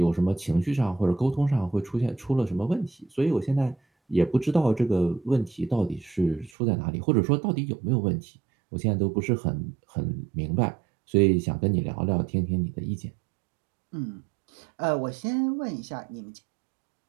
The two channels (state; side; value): drops out; left; at 6.5 s